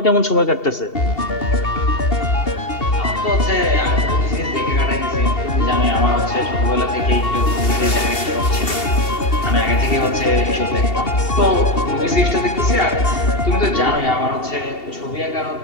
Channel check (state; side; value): late; right; 2.7 ms